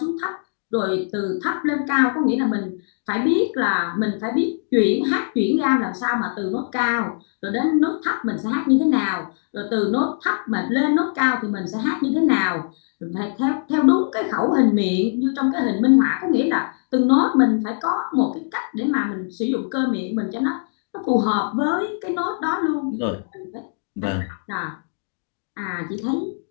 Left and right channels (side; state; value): right; silent; digital silence